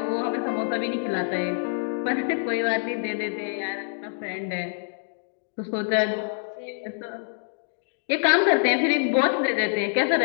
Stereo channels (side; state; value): right; silent; digital silence